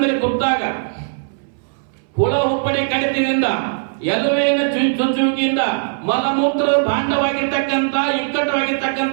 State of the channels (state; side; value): silent; left; 64 dB below the other